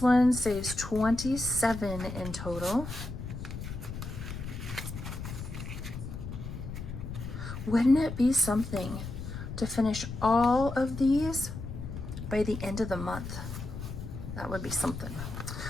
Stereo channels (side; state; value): left; noise; rumble, 8 dB below the sound